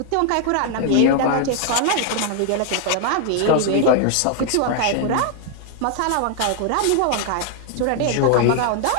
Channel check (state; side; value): different; both; correlation 0.00